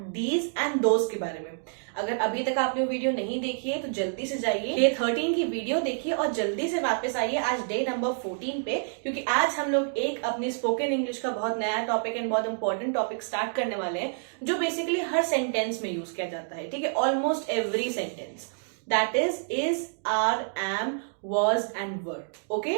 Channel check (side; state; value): left; silent; digital silence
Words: these and those के बारे में. अगर अभी तक आपने वो वीडियो नहीं देखी है तो जल्दी से जाइए डे 13 की वीडियो देखिए और जल्दी से वापस आइए आज डे नंबर 14 पे, क्योंकि आज हम लोग एक अपनी स्पोकन इंग्लिश का बहुत नया टॉपिक एंड बहुत इंपॉर्टेंट टॉपिक स्टार्ट करने वाले हैं जो बेसिकली हर सेंटेंस में यूज किया जाता है. ठीक है, almost every sentence. That is, are, am, was and were. Okay,